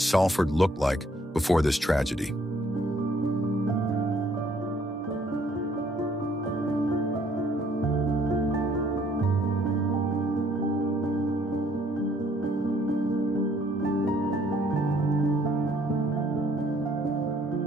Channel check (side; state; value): both; normal; correlation 0.64